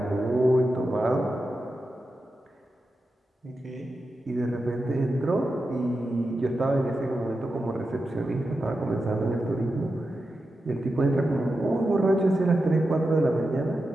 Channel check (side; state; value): both; normal; correlation 0.90